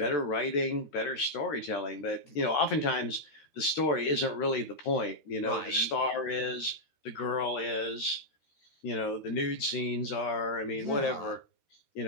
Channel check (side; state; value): right; late; 14 ms